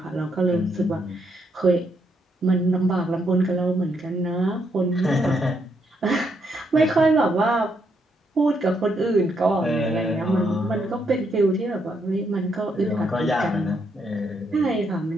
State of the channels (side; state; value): both; normal; correlation 0.76